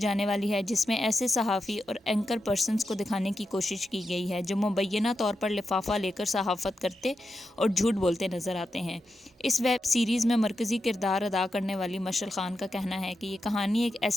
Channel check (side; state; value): both; normal; correlation 0.88